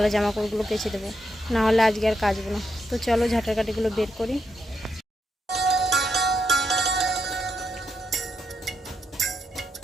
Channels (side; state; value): both; normal; correlation 0.82